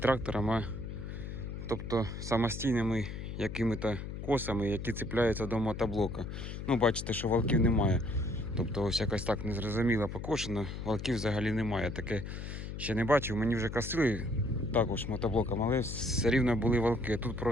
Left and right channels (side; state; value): left; noise; hum, 7 dB below the sound